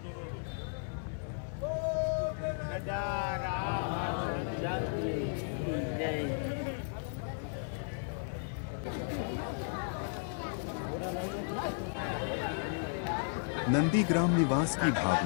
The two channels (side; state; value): right; silent; digital silence